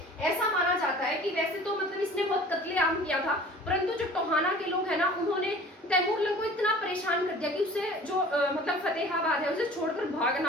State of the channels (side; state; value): both; normal; correlation 0.45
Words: ऐसा माना जाता है कि वैसे तो मतलब इसने बहुत कत्लेआम किया था, परंतु जो टोहाना के लोग हैं ना, उन्होंने तैमूर को इतना परेशान कर दिया कि उसे जो मतलब फतेहाबाद है उसे छोड़कर